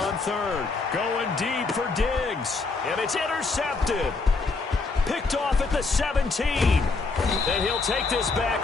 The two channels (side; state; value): right; quieter; 4.0 dB